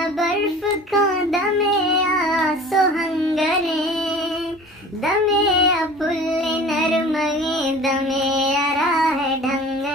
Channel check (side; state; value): both; normal; correlation 0.42